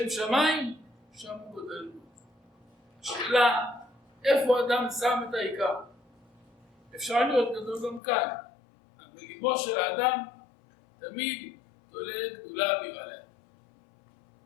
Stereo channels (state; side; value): drops out; right; at 8.0 s